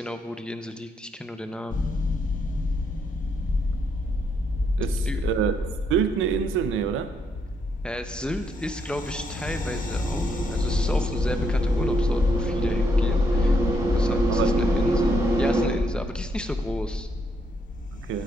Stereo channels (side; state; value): both; normal; correlation 0.75